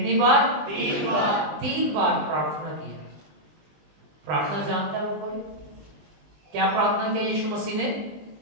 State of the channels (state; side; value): late; left; 20 ms